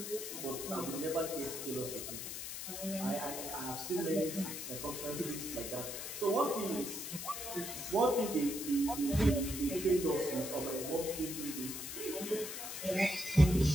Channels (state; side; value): noise; left; hiss, 6 dB below the sound